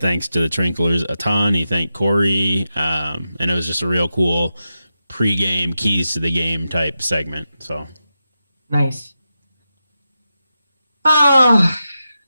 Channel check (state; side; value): inverted; both; correlation -0.90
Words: to the Trinklers a ton. He thanked Corey, and it was just a real cool pregame keys to the game type segment. So Nice. Oh,